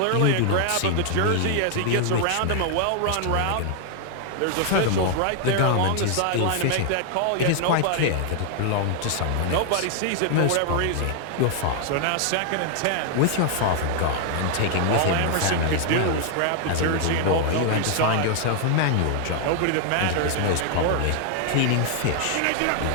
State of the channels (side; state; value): both; different; correlation 0.00